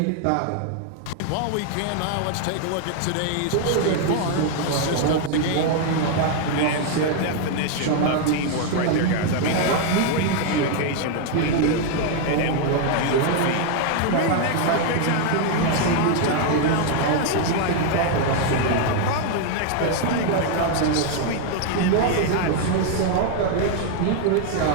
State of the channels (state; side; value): different; both; correlation 0.00